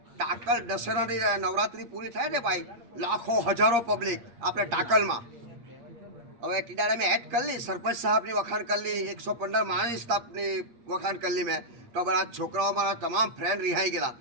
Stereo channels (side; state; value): left; late; 8.5 ms